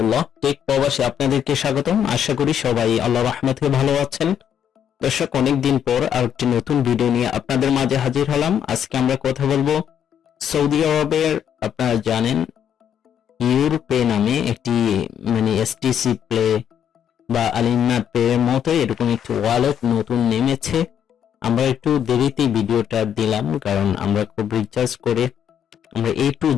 টেক প্রবাসে আপনাদেরকে স্বাগতম। আশা করি সবাই আল্লাহর রহমতে ভালো আছেন। দর্শক, অনেকদিন পর আরেকটি নতুন ভিডিও নিয়ে আপনাদের মাঝে হাজির হলাম। আজকে আমরা কথা বলবো সৌদি আরবের, আপনারা জানেন ইউরপে নামে একটি এসটিসি প্লে বা আলিনা পে এর মতো এরকম একটি ওয়ালেট নতুন নেমেছে। আমরা একটু দেরিতে ভিডিওটা দিলাম, কারণ আমরা খুব রিচার্জ করে আমরা A to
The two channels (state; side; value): quieter; right; 9.1 dB